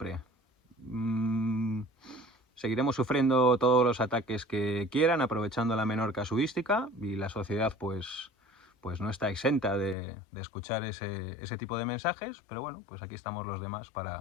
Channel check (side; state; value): right; drops out; at 10.0 s